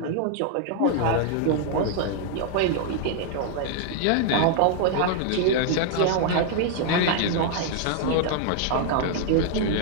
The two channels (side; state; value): both; different; correlation 0.00